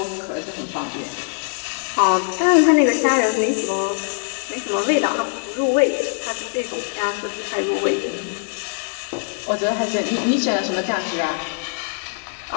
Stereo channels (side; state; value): right; silent; digital silence